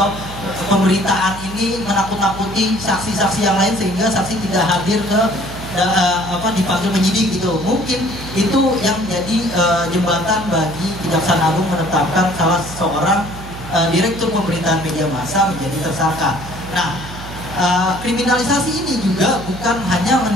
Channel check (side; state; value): right; noise; hum, 13 dB below the sound